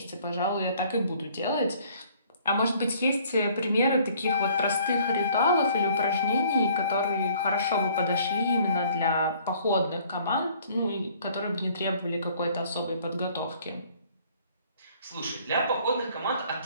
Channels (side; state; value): both; inverted; correlation -0.58